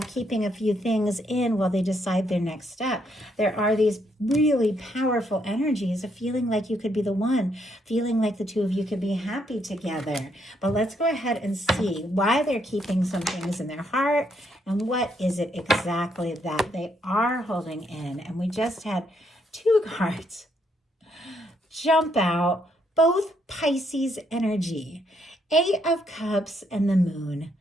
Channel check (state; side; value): normal; both; correlation 0.74